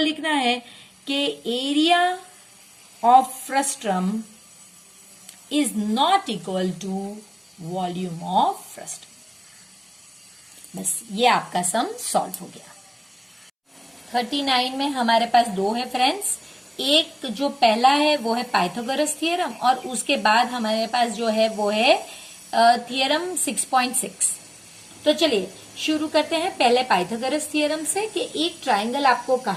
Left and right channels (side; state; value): both; identical; correlation 1.00